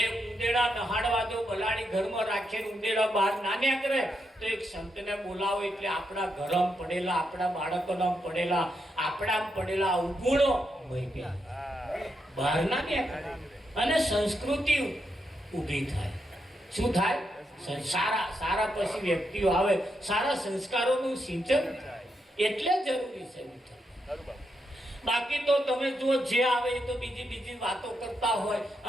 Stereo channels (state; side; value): normal; both; correlation 0.82